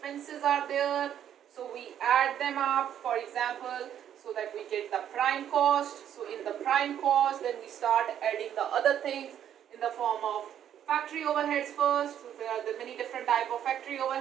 are there. So we add them up, for example, so that we get the prime cost. So in the prime cost, then we start adding the other things in the form of factory overheads first. So there are the many different type of factory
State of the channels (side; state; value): left; quieter; 10.0 dB